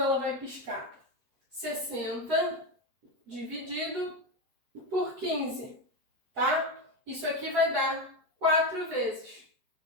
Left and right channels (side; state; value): left; late; 8.0 ms